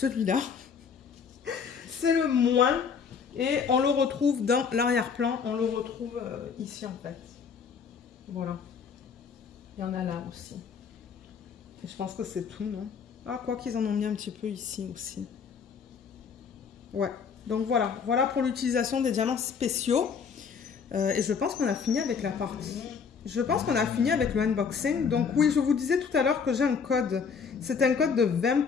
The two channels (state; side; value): quieter; right; 6.2 dB